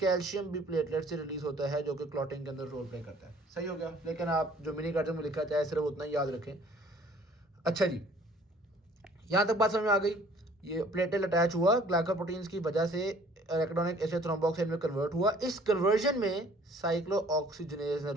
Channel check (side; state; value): both; normal; correlation 0.55